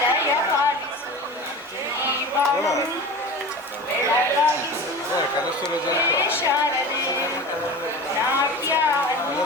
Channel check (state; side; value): normal; both; correlation 0.33